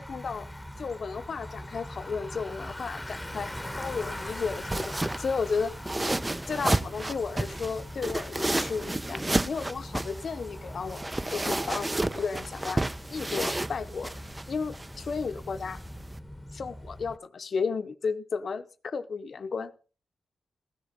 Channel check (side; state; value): both; normal; correlation 0.92